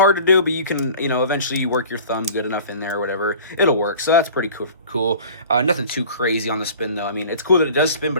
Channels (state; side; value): inverted; both; correlation -0.44